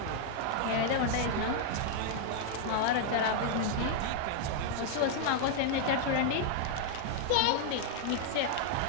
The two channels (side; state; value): both; different; correlation 0.00